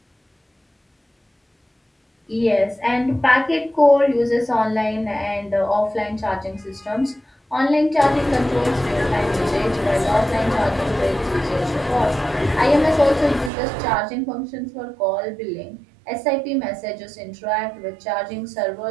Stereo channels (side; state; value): left; drops out; at 13.5 s